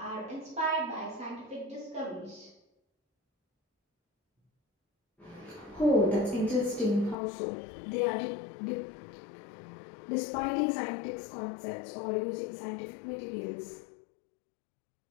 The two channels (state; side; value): drops out; right; at 7.2 s